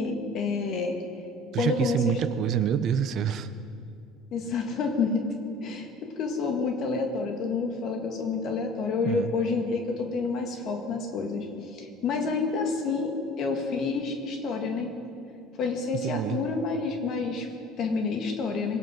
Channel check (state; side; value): normal; both; correlation 0.46